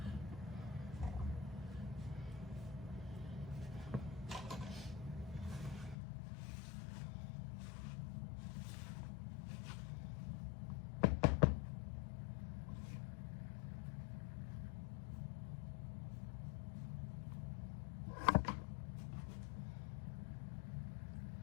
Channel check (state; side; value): drops out; right; at 6.0 s